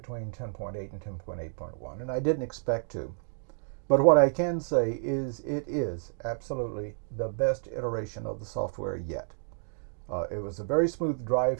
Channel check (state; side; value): silent; left; digital silence